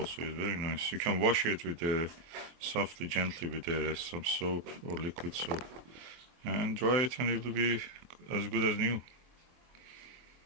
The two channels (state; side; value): late; left; 23 ms